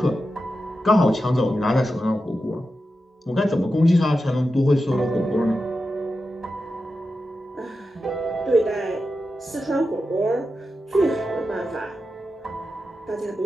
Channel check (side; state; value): both; normal; correlation 0.90